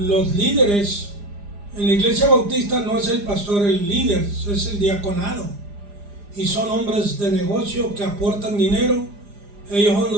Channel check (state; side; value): late; left; 4.9 ms